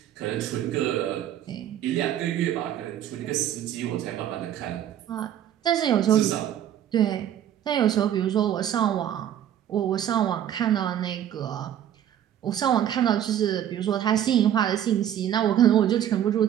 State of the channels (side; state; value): left; quieter; 10.6 dB